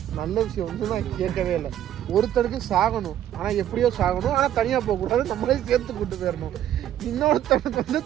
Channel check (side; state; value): left; quieter; 11.4 dB